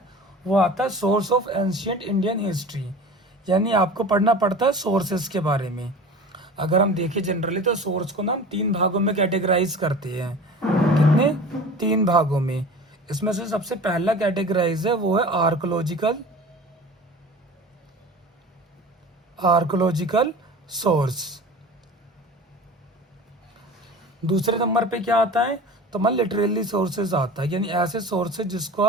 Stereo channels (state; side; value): normal; both; correlation 0.38